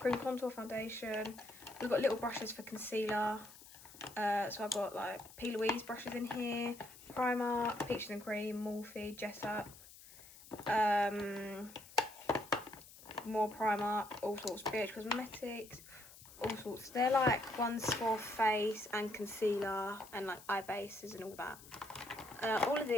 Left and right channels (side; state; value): left; noise; hiss, 19 dB below the sound